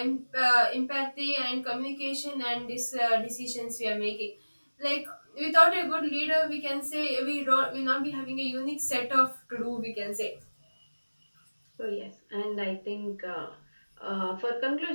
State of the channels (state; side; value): inverted; both; correlation -1.00